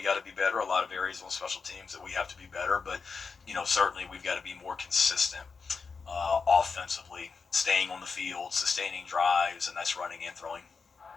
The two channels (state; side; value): quieter; right; 5.1 dB